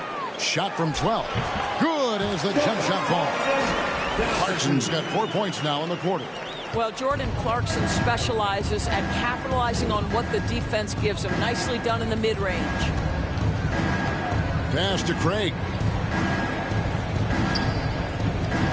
Shot from 12. Good as the jump shot falls. Clarkson's got 4 points now in the quarter. Well, Jordan Clarkson specializes at capitalizing on what the defense gives him. Nicely done in the mid-range. Pass to Craig.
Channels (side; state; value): both; identical; correlation 1.00